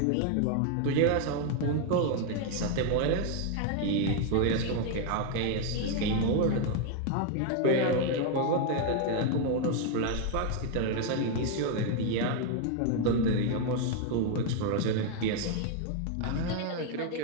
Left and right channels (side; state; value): both; different; correlation 0.01